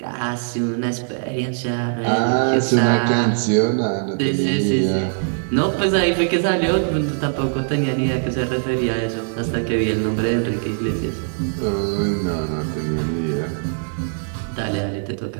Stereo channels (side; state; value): left; silent; 65 dB below the other